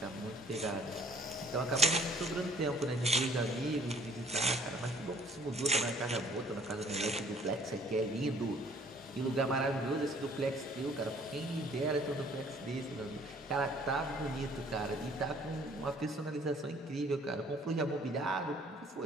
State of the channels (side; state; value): both; normal; correlation 0.57